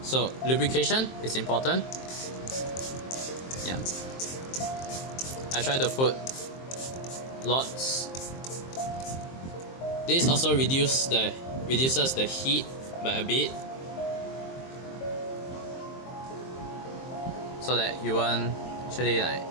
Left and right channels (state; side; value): late; right; 23 ms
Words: So lubrication is important. Yeah, I try to put lots. This also reduces the heat by a bit, so that you won't actually